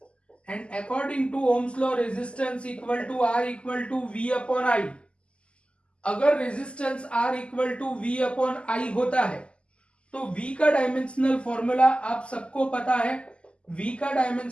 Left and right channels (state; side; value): late; right; 0.054 ms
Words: And according to Ohm's law resistance equal to R equal to V upon I. अगर resistance R equal to V upon I होता है तो V का डायमेंशनल फॉर्मूला आप सबको पता है. V का